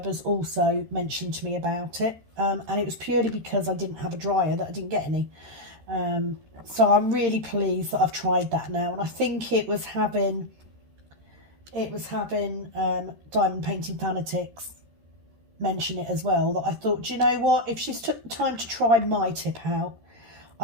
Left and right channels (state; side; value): late; left; 13 ms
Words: also mentioned to me about it, and it was purely because I didn't have a dryer that I didn't get any. So I'm really pleased that I've tried that now, and I think it was having Diamond Painting Fanatics mention it as well, that I thought, do you know what, if she's took the time to try my tip out,